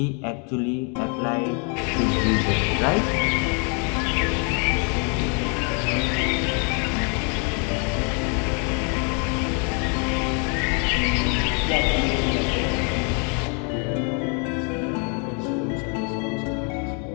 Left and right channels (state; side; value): quieter; right; 37.4 dB